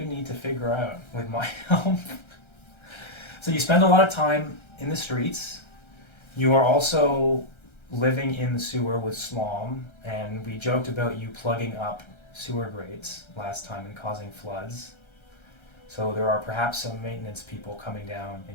need to figure out with my help. So you spend a lot of time in the streets. You are also living in the sewer with Slom, and we joked about you plugging up sewer grates last time and causing floods. So there are perhaps some maintenance people coming down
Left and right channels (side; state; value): right; late; 1.3 ms